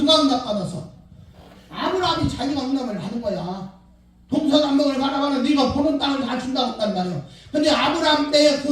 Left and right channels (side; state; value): both; identical; correlation 1.00